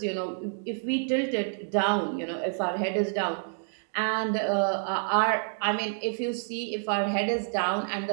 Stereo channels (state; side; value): silent; left; digital silence